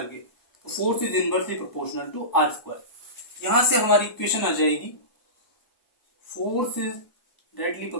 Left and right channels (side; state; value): right; late; 1.2 ms